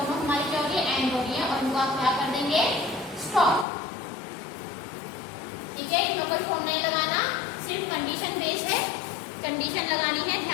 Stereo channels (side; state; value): right; drops out; at 3.7 s